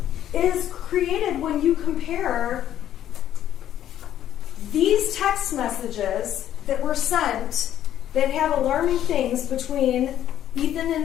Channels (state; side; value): quieter; right; 11.3 dB